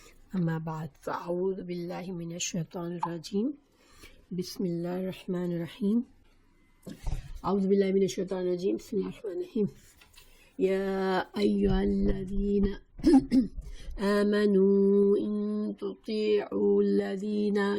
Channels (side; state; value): both; identical; correlation 1.00